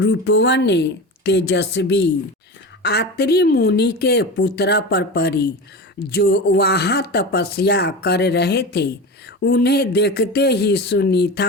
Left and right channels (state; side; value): normal; both; correlation 0.27